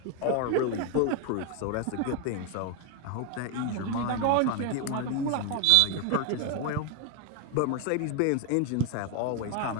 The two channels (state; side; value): different; both; correlation 0.01